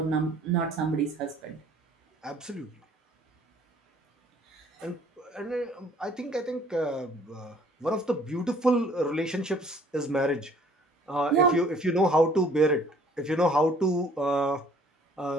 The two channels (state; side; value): normal; both; correlation 0.57